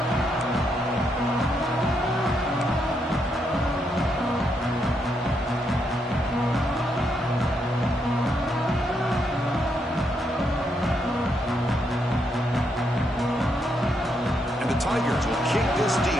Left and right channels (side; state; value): both; normal; correlation 0.78